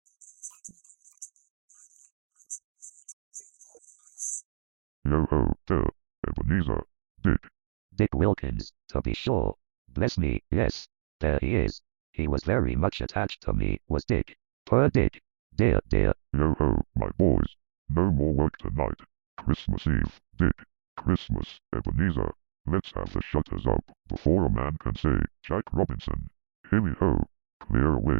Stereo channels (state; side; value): silent; left; digital silence